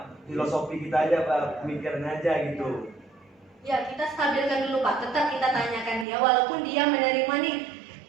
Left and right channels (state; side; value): drops out; left; at 6.1 s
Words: filosofi kita aja, Pak, pemikiran aja gitu. Ya, kita stabilkan dulu Pak. Tetap kita tanyakan dia. Walaupun dia menerima nih,